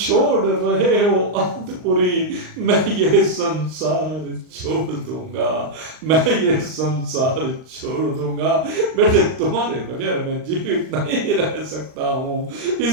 रहे हो अवधपुरी, मैं ये संसार छोड़ दूंगा, मैं ये संसार छोड़ दूंगा। बेटे तुम्हारे बगैर मैं जीवित नहीं रह सकता हूं,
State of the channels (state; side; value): late; left; 39 ms